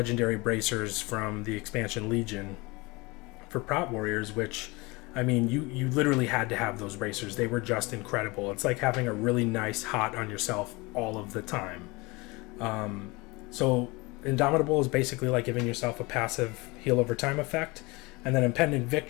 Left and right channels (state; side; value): quieter; right; 24.9 dB